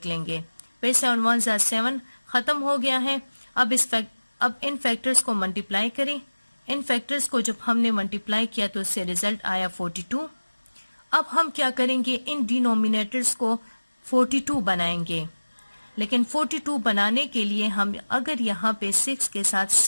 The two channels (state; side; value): inverted; both; correlation -1.00